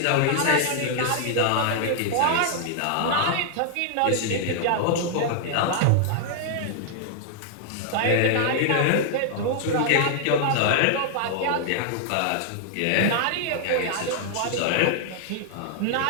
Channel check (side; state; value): both; different; correlation -0.01